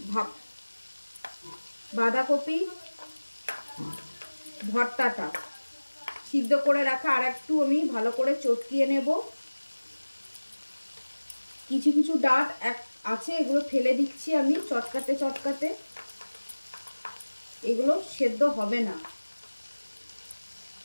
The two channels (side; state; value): both; inverted; correlation -1.00